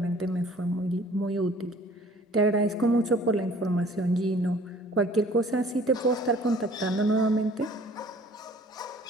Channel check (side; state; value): both; normal; correlation 0.53